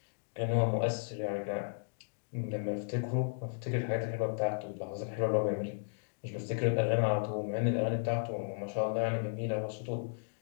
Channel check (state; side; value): silent; right; digital silence